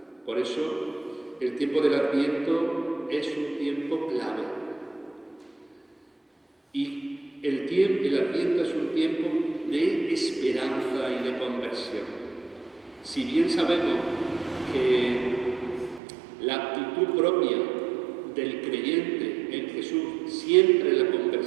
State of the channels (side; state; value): left; drops out; at 16.0 s